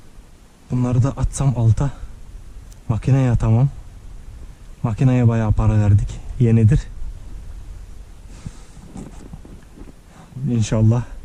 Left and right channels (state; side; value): identical; both; correlation 1.00